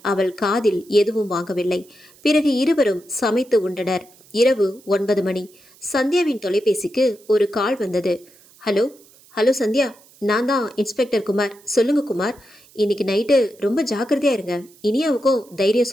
அவள் காதில் எதுவும் வாங்கவில்லை. பிறகு இருவரும் சமைத்து உண்டனர். இரவு 9 மணி. சந்தியாவின் தொலைபேசிக்கு ஒரு கால் வந்தது. ஹலோ ஹலோ சந்தியா, நான் தான் இன்ஸ்பெக்டர் குமார். சொல்லுங்க குமார், இன்னைக்கு நைட்டு ரொம்ப ஜாக்கிரதையா இருங்க. இனியாவுக்கும் தைரியம்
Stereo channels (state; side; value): noise; right; hiss, 27 dB below the sound